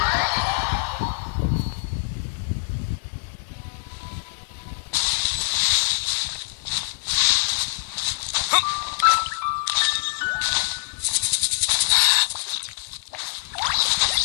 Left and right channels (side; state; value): right; silent; digital silence